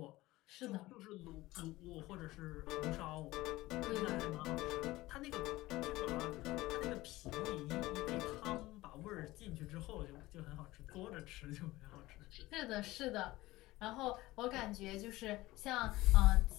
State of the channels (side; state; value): right; quieter; 18.5 dB